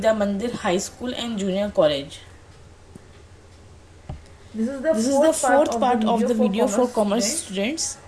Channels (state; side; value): identical; both; correlation 1.00